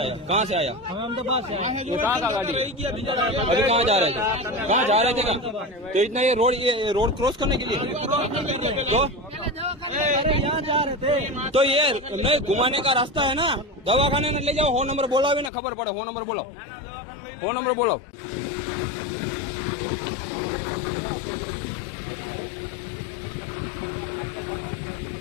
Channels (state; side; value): drops out; right; at 15.5 s